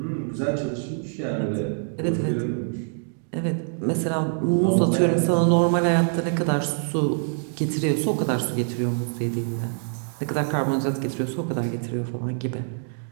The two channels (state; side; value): silent; left; digital silence